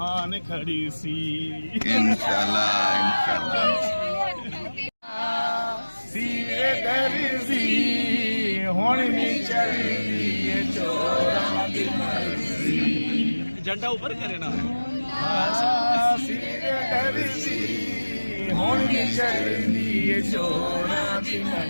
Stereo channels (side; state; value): both; inverted; correlation -1.00